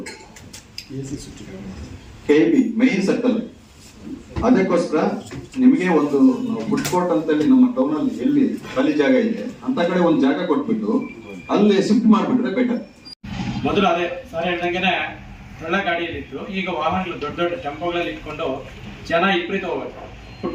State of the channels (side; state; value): both; identical; correlation 1.00